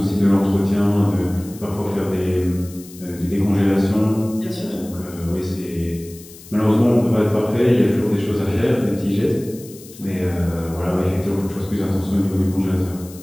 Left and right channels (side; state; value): left; noise; hiss, 19 dB below the sound